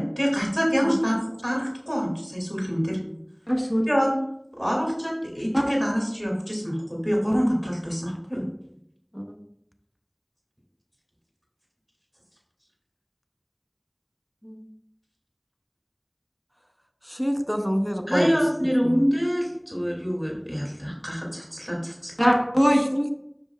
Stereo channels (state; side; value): identical; both; correlation 1.00